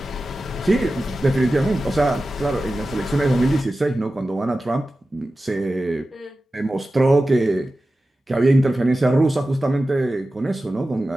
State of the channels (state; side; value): normal; both; correlation 0.94